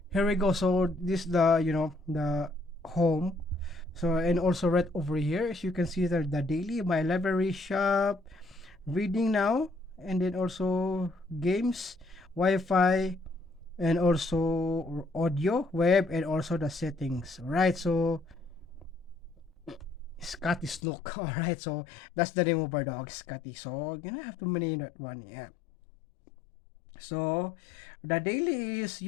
here we go. So this the the home. So and also right over here, as you can see there, the daily, my library, shop, reading now, and then also games, Wi-Fi, and also audio, web, and also the settings. Right. So Scotty Snook. All right. So that's the name of our dog, Scotty. So gonna have to name that one. Yeah. So the daily is,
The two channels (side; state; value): right; drops out; at 20.8 s